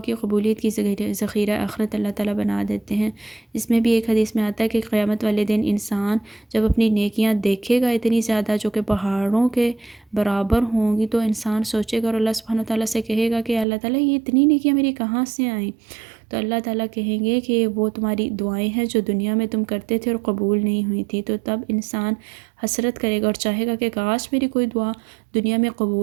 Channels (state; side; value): drops out; left; at 13.7 s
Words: کی قبولیت کی، ذخیرہ آخرت اللہ تعالیٰ بنا دیتے ہیں۔ اس میں بھی ایک حدیث میں آتا ہے کہ قیامت والے دن انسان جب اپنی نیکیاں دیکھے گا اتنی زیادہ جو کہ پہاڑوں کے برابر ہوں گی، تو انسان سوچے گا اور اللہ سبحانہ وتعالیٰ سے کہے گا کہ اللہ تعالیٰ یہ اتنی نیکیاں میری کہاں سے آئیں؟ تو اللہ تعالیٰ کہیں گے کہ وہ تمہاری دعائیں ہیں جو دنیا میں تم کرتے تھے اور قبول نہیں ہوئی تھی، تو تب انسان حسرت کرے گا اور چاہے گا کہ کاش میری کوئی دعا دنیا میں